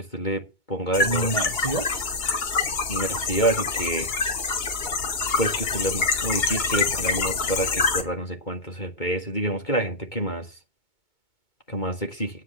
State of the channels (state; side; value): late; right; 2.2 ms